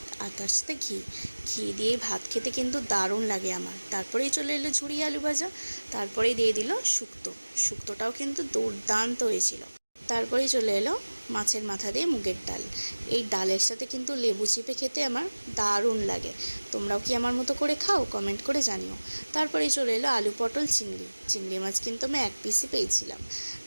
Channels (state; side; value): inverted; both; correlation -1.00